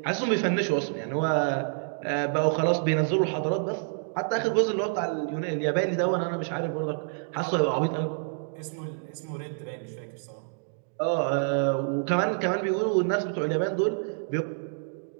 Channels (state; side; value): silent; left; digital silence